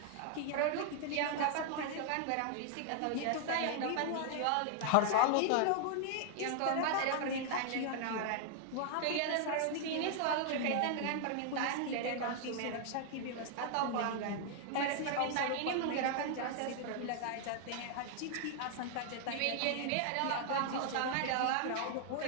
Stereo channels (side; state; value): both; different; correlation 0.00